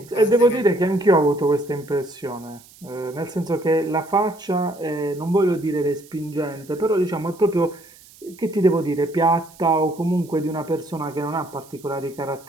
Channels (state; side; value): noise; right; hiss, 24 dB below the sound